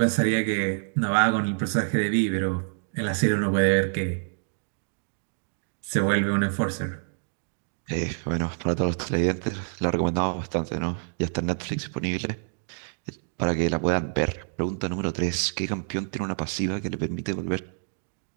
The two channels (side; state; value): left; silent; digital silence